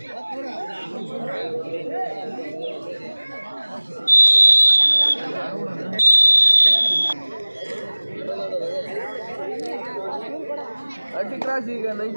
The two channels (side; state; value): both; inverted; correlation -1.00